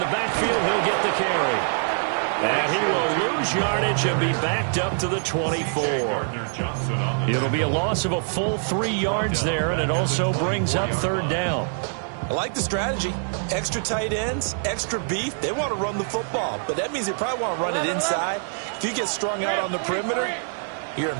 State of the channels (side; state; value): left; silent; digital silence